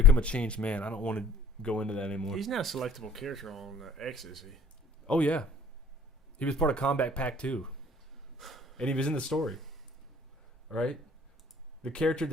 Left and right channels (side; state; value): both; normal; correlation 0.54